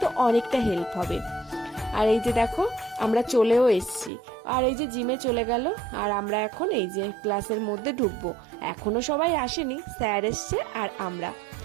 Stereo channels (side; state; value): left; drops out; at 4.1 s